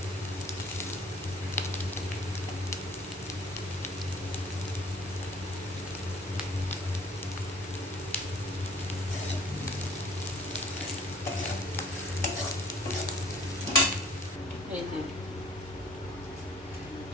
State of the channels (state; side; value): normal; both; correlation 0.50